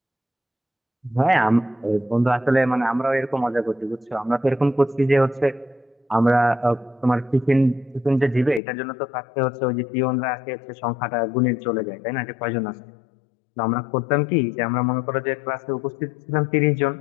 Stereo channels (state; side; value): drops out; right; at 8.6 s